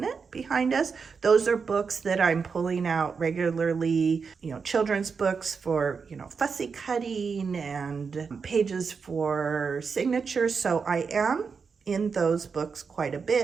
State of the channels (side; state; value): left; quieter; 5.5 dB